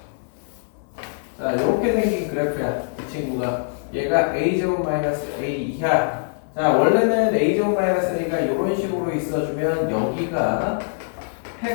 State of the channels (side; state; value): right; silent; digital silence